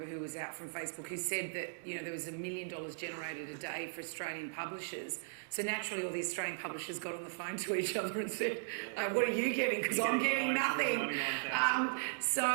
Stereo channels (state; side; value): silent; left; digital silence